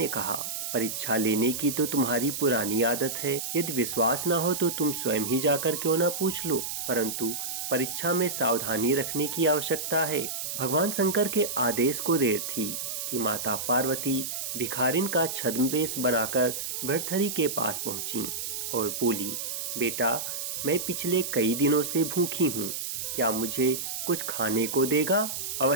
कहा, परीक्षा लेने की तो तुम्हारी पुरानी आदत है। यदि विश्वास न हो तो तुम स्वयं ही जाकर क्यों न पूछ लो, परंतु परीक्षा में सावधानी रखने की आवश्यकता है। भगवान शंकर के आदेश को देर थी कि माता पार्वती भिखारिन का छद्मवेश बनाकर भर्तहरि के पास पहुंची और बोली, बेटा, मैं पिछले कई दिनों से भूखी हूँ, क्या मुझे कुछ खाने को देगा?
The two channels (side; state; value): right; noise; hiss, 4 dB below the sound